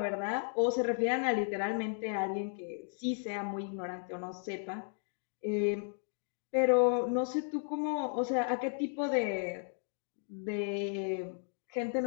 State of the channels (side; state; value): right; silent; 55 dB below the other